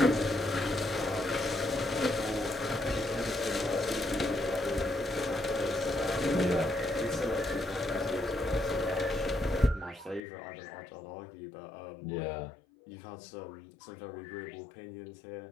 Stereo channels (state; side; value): drops out; right; at 10.2 s